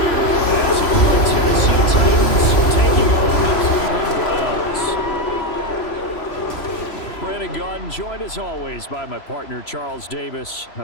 here as the Tennessee Titans taking on the Cleveland Browns. Brandon Gaudin joined as always by my partner Charles Davis.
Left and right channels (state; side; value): late; right; 3.0 ms